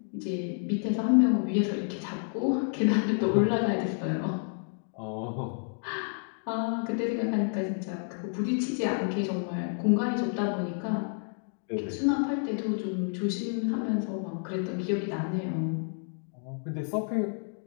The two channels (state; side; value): silent; right; 58 dB below the other